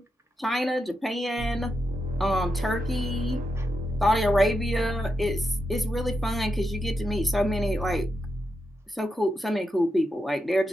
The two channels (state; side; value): normal; both; correlation 0.85